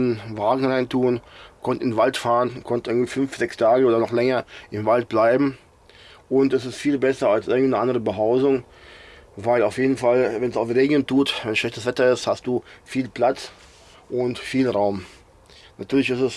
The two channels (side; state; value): both; identical; correlation 1.00